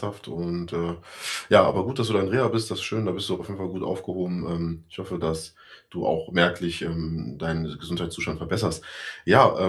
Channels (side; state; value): both; identical; correlation 1.00